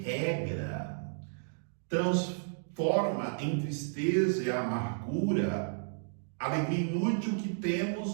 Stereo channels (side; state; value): left; silent; digital silence